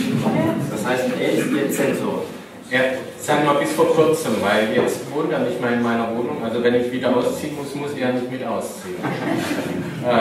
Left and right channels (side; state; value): both; identical; correlation 1.00